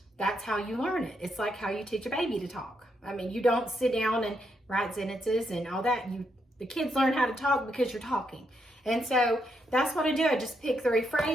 that's how you learn it. It's like how you teach a baby to talk. I mean, you don't sit down and write sentences and all that. The kids learn how to talk because you're talking. And so that's what I do. I just pick 3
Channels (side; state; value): both; normal; correlation 0.79